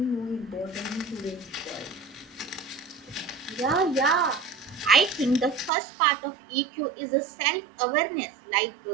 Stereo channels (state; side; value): drops out; left; at 5.7 s